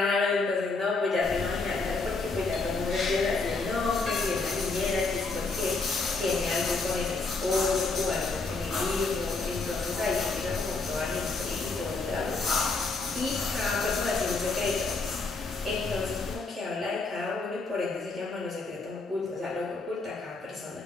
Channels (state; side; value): quieter; right; 3.8 dB